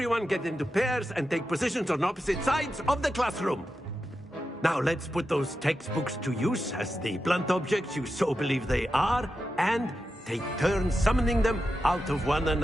get into pairs and take positions on opposite sides of the classroom. Now let's put those textbooks to use as the blunt objects you so believe they are, and take turns summoning them out of one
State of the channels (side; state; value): both; normal; correlation 0.90